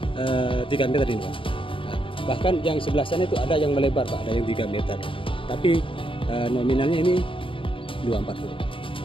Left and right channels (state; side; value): late; right; 0.25 ms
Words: 3 meter ini Pak. Nah, bahkan yang sebelah sana itu ada yang melebar Pak, ada yang 3 meter. Tapi nominalnya ini